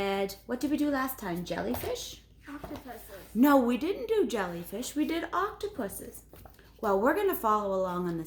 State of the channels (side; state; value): both; identical; correlation 1.00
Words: what did we do last time? Jellyfish? Octopuses. No, we didn't do jellyfish. We did octopuses. Well, we're going to follow along on the